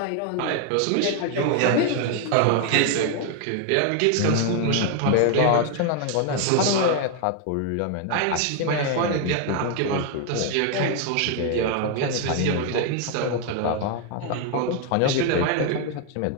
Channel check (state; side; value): different; both; correlation 0.01